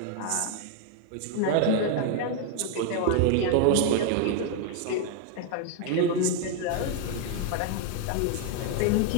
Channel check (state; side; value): different; both; correlation 0.00